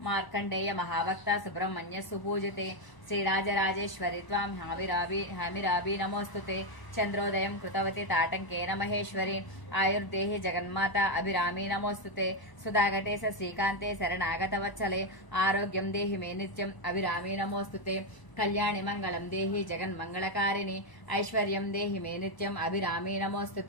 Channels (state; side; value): late; right; 1.0 ms